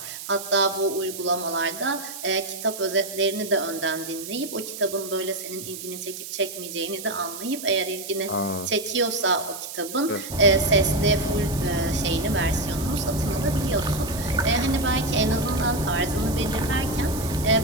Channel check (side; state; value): right; noise; hiss, 10 dB below the sound